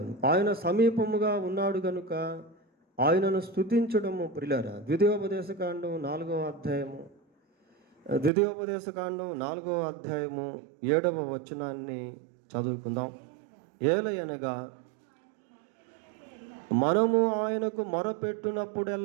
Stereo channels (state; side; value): drops out; left; at 8.3 s